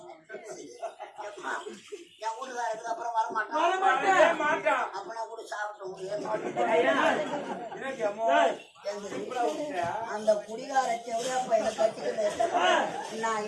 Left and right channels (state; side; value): identical; both; correlation 1.00